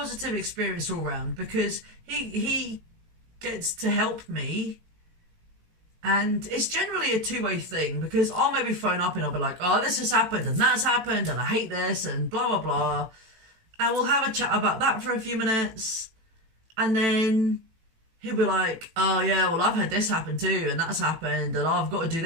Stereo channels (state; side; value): late; left; 18 ms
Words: experience all round, because he gets to help me, and it's generally a two-way thing, because I'll maybe phone up and I'll be like, oh, this has happened and that's happened and I hate this and blah blah blah, and we'll have a chat about that for a few minutes, and then he'll be like, oh yeah, well I've had this happen too and that's happened and I've got to do